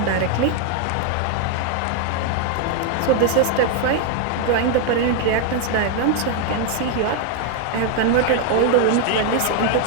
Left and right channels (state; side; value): different; both; correlation 0.00